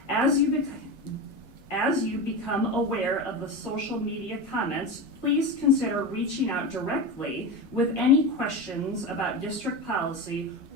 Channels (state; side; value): normal; both; correlation 0.22